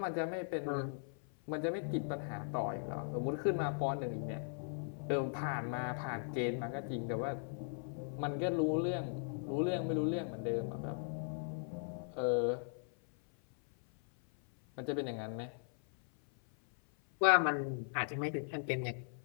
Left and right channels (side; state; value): right; silent; 52 dB below the other